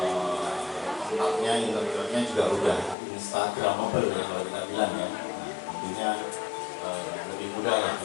tempatnya interiornya juga udah instagramable ya kalau kita bilang ya. Tentunya lebih mudah lah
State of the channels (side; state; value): right; drops out; at 3.0 s